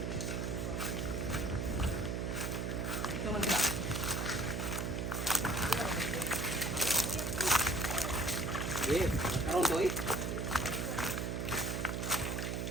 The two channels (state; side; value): noise; right; hum, 1 dB below the sound